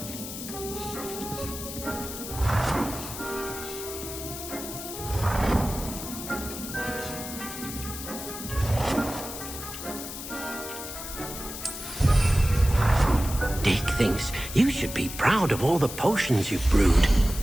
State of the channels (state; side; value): noise; left; hiss, 9 dB below the sound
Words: Deek Dick thinks you should be proud of all the potions you've brewed.